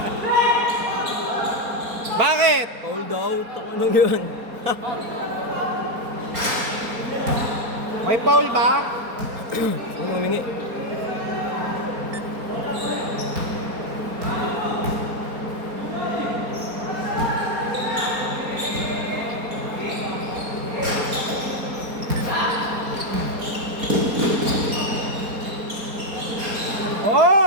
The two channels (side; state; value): left; late; 4.3 ms